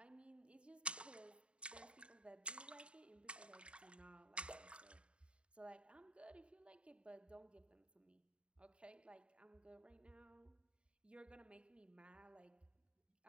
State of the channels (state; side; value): late; left; 0.056 ms